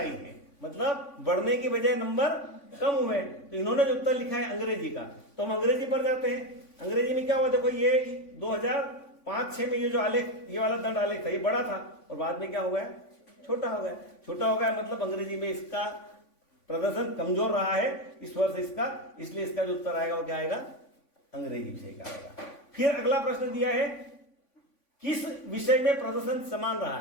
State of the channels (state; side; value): late; right; 3.5 ms